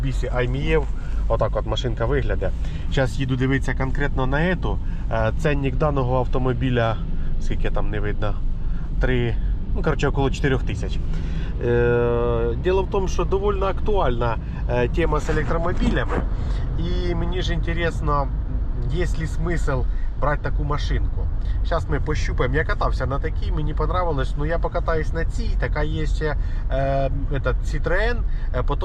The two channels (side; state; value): both; identical; correlation 1.00